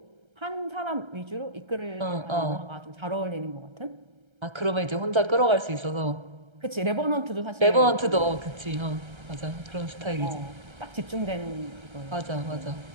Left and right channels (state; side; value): late; left; 1.3 ms